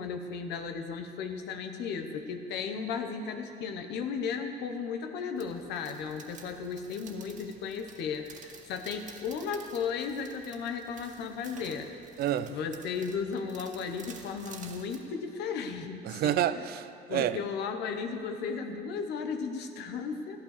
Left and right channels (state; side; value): normal; both; correlation 0.28